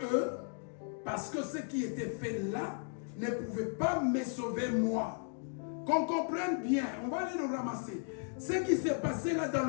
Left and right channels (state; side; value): silent; right; 54 dB below the other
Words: eux. Parce que ce qui était fait là ne pouvait pas me sauver moi. Qu'on comprenne bien, on va aller le ramasser. Ce qui s'est passé là dans